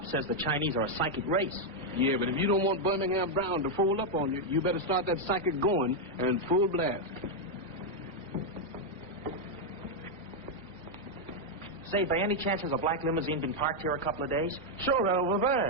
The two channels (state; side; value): normal; both; correlation 0.00